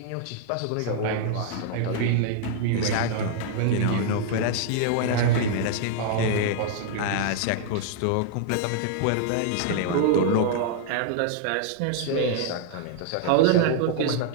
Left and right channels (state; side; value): different; both; correlation -0.01